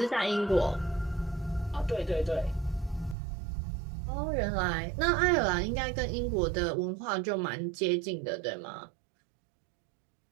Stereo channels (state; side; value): drops out; left; at 3.2 s